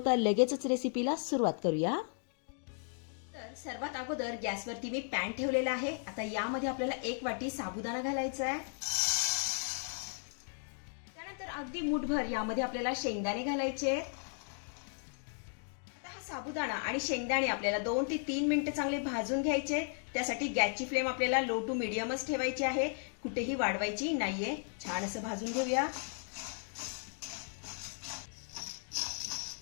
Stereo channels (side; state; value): right; silent; 54 dB below the other